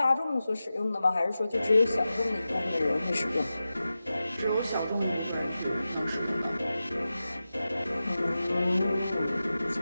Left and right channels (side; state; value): both; inverted; correlation -0.94